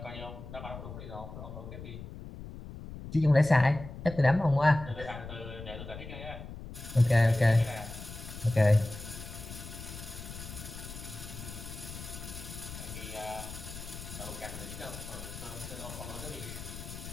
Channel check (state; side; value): noise; left; rumble, 11 dB below the sound